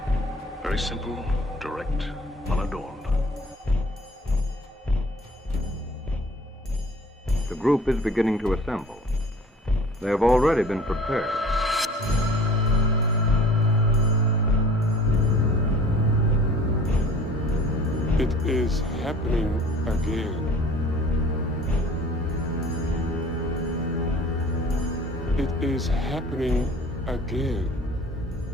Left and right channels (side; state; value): both; normal; correlation 0.48